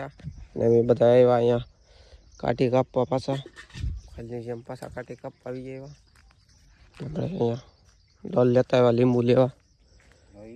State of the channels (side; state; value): both; identical; correlation 1.00